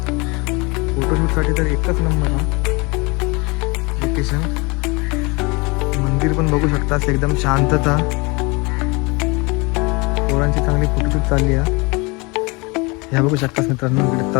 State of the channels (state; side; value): quieter; right; 27.4 dB